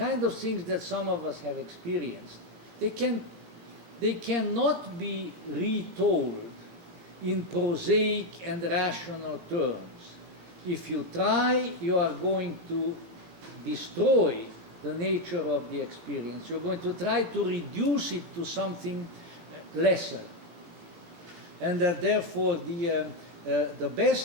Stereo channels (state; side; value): late; left; 18 ms